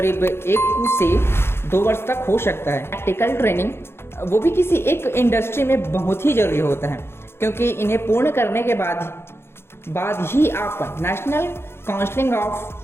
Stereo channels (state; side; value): late; right; 0.12 ms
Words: 1 से 2 वर्ष तक हो सकता है। प्रैक्टिकल ट्रेनिंग वो भी किसी एक इंडस्ट्री में बहुत ही जरूरी होता है, क्योंकि इन्हें पूर्ण करने के बाद ही आप national council